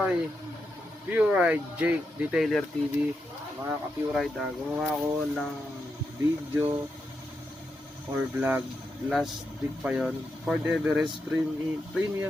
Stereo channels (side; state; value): both; normal; correlation 0.85